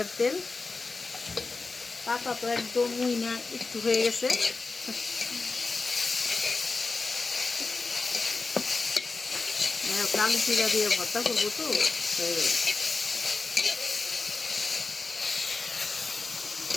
তেল। পাতা তো একদম উইনা একটু হয়ে গেছে। কালো জিরা দিয়ে ভর্তা করবো তো, হয়ে গেল।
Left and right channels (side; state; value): right; quieter; 3.9 dB